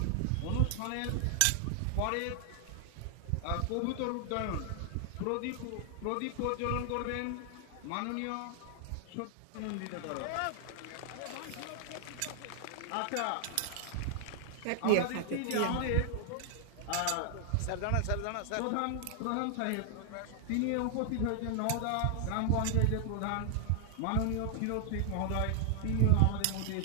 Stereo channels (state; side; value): different; both; correlation 0.00